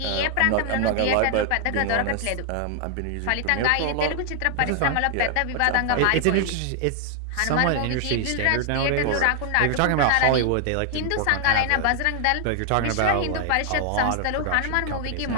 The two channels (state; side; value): different; both; correlation 0.00